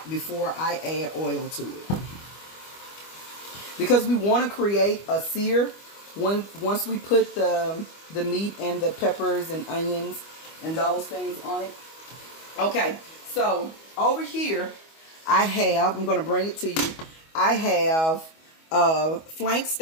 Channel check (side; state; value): right; late; 25 ms